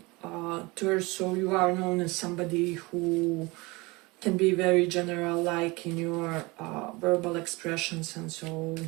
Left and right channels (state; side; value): quieter; left; 24.2 dB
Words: Taurus. So you are known as somebody who can be very general, like in your verbal expressions, and so